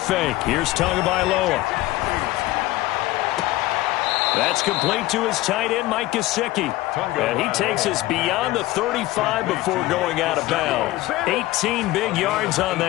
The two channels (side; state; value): right; quieter; 17.6 dB